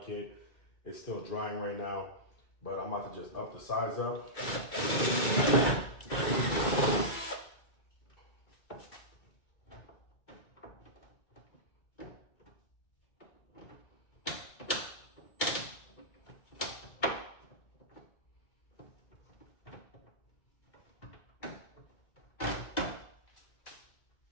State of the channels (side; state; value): right; late; 2.2 ms